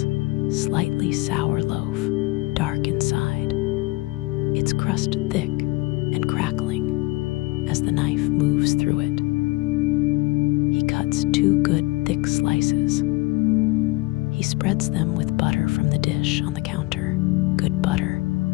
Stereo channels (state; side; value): quieter; right; 21.9 dB